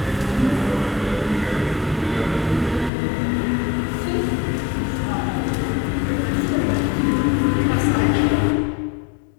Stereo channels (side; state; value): right; drops out; at 2.9 s